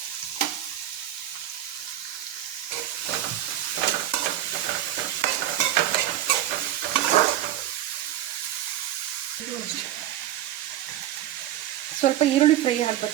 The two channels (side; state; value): left; quieter; 12.5 dB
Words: ಸ್ವಲ್ಪ ಈರುಳ್ಳಿ ಫ್ರೈ